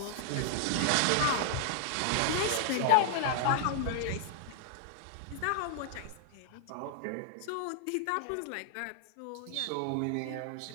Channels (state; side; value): different; both; correlation -0.01